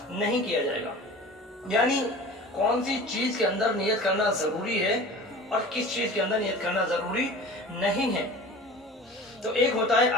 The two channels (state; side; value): normal; both; correlation 0.39